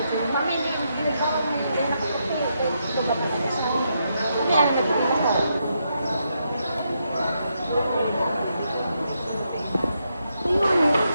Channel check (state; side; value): inverted; both; correlation -0.81